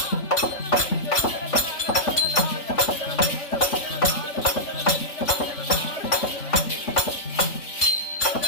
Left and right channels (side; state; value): right; late; 3.5 ms